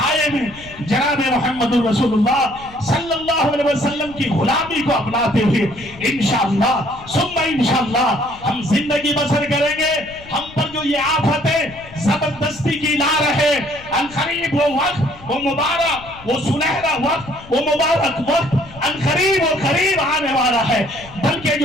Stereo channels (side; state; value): left; noise; rumble, 20 dB below the sound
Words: میں جناب محمد رسول اللہ صلی اللہ علیہ وسلم کی غلامی کو اپناتے ہوئے انشاءاللہ ثم انشاءاللہ ہم زندگی بسر کریں گے. ہم پر جو یہ آفتیں زبردستی کی لا رہے, عنقریب وہ وقت, وہ مبارک, وہ سنہرا وقت, وہ مبارک وقت عنقریب و قریب آنے والا ہے, بلکہ